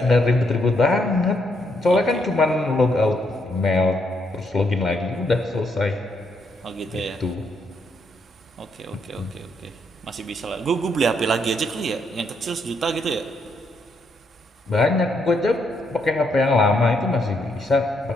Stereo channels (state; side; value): normal; both; correlation 0.75